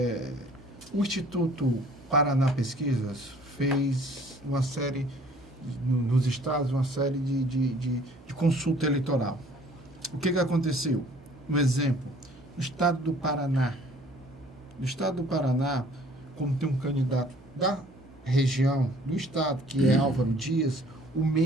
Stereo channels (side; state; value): right; noise; hum, 24 dB below the sound